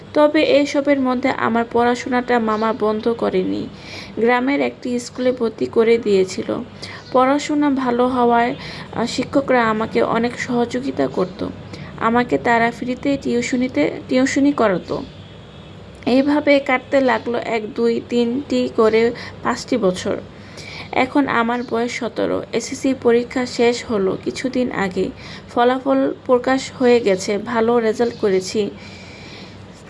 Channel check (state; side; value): identical; both; correlation 1.00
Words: তবে এসবের মধ্যে আমার পড়াশোনাটা মামা বন্ধ করেনি। গ্রামের একটি স্কুলে ভর্তি করে দিয়েছিল। পড়াশোনা ভালো হওয়ায় শিক্ষকরা আমাকে অনেক সহযোগিতা করত। আমাকে তারা ফ্রিতে টিউশনি করাতো। এইভাবে কাটতে লাগলো 1, 2, 3টি করে 5টি বছর। এখন আমার বয়স 17। এসএসসি পরীক্ষা শেষ হলো কিছুদিন আগে। ফলাফল প্রকাশ হয়ে গেছে। ভালো রেজাল্ট করেছি,